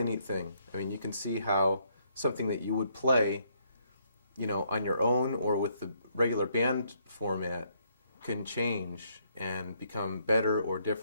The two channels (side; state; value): both; inverted; correlation -0.71